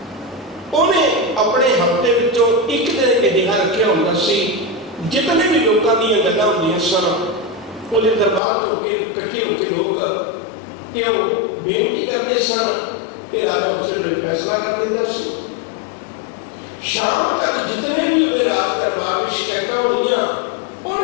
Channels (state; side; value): drops out; right; at 8.4 s